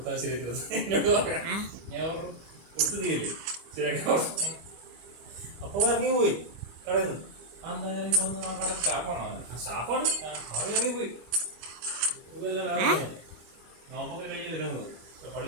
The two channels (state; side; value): late; left; 25 ms